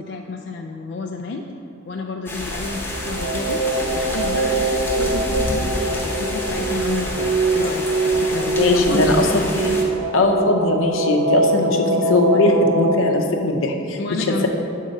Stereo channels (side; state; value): both; normal; correlation 0.13